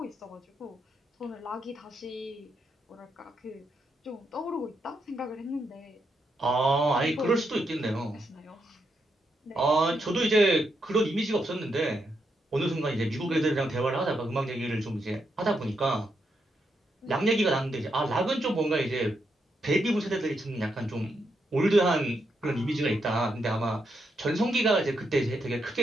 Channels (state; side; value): normal; both; correlation 0.81